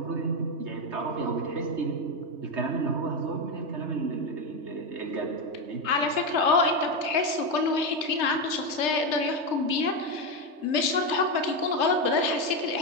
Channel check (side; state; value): left; late; 3.3 ms